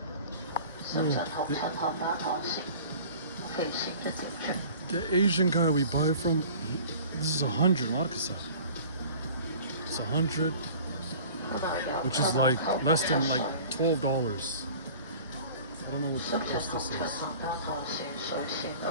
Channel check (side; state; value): both; inverted; correlation -0.44